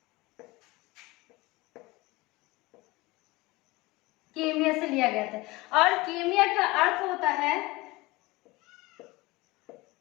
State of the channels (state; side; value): quieter; right; 21.8 dB